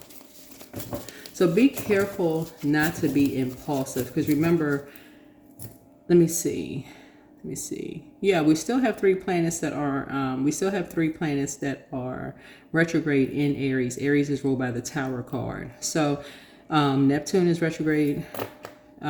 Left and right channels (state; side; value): identical; both; correlation 1.00